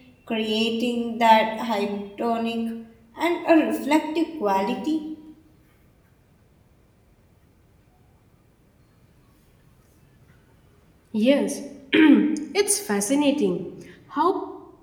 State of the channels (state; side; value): identical; both; correlation 1.00